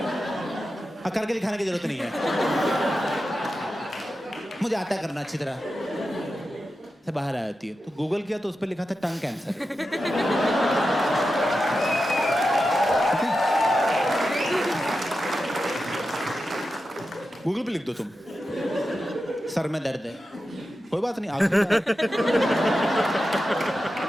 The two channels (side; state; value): both; normal; correlation 0.91